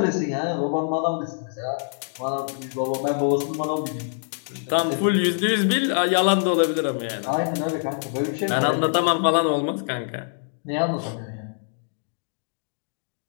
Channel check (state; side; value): silent; right; digital silence